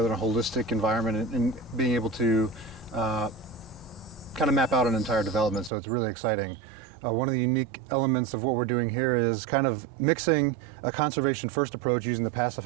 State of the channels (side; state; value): left; drops out; at 5.7 s